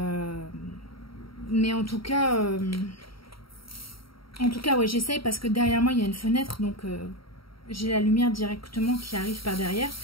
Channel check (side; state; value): right; late; 0.74 ms